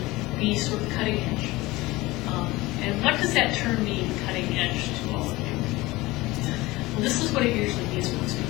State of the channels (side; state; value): right; quieter; 20.1 dB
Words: be sort of cutting edge. And what does that term mean, cutting edge, to all of you? Well, this is what it usually means for most